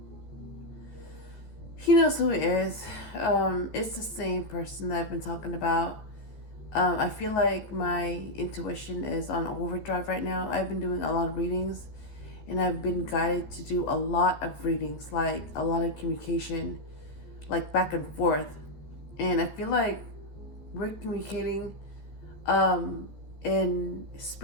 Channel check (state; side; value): late; right; 14 ms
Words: He knows who he is. It's the same person that I've been talking about. I feel like my intuition is on overdrive right now. I've been doing a lot of readings, and I've been guided to do a lot of readings, like a lot of communication, like back and forth. And I feel like we're communicating in